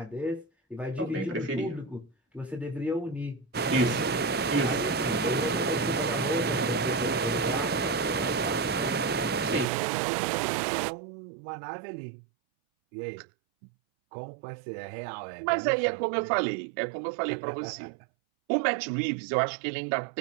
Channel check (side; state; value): left; drops out; at 9.7 s